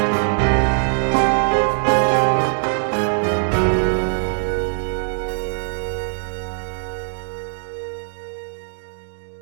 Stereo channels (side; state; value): left; silent; 65 dB below the other